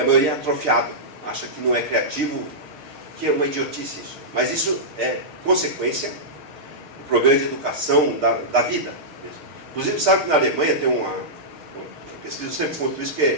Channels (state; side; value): late; left; 6.5 ms